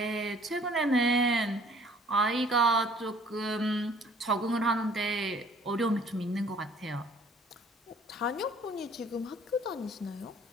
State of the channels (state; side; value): normal; both; correlation 0.56